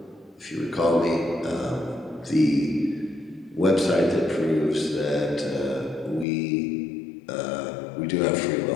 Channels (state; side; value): drops out; right; at 6.2 s